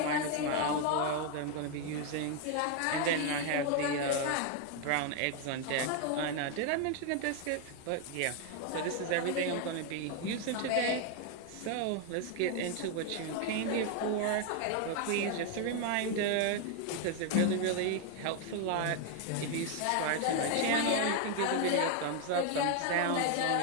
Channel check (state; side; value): different; both; correlation 0.01